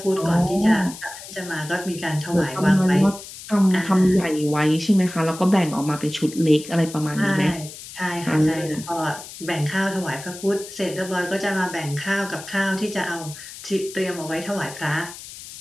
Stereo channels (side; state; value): left; noise; hiss, 14 dB below the sound